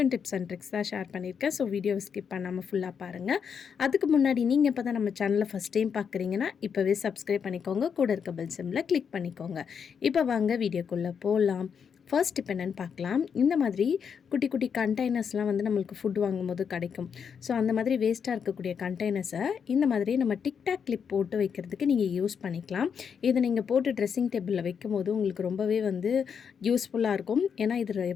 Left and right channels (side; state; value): right; quieter; 6.9 dB